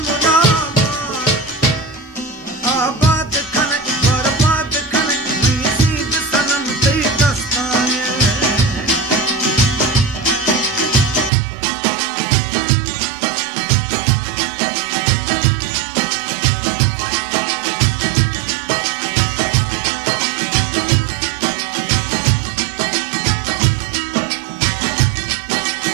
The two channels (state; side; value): drops out; left; at 11.3 s